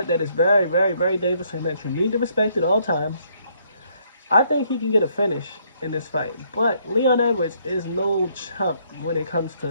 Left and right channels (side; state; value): both; inverted; correlation -0.69